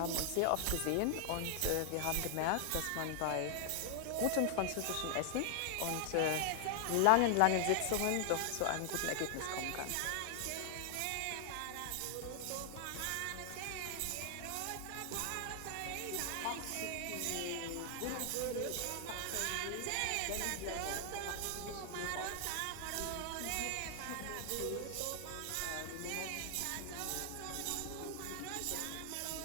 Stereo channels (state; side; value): different; both; correlation 0.00